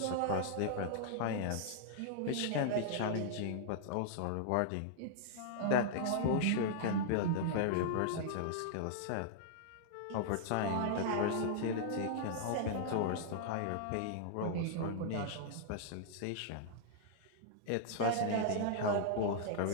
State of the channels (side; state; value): both; different; correlation -0.01